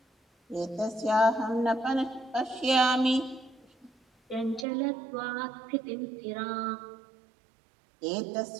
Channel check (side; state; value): left; drops out; at 4.7 s